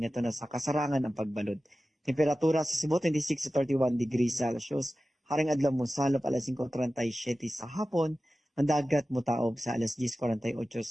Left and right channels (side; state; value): both; normal; correlation 0.95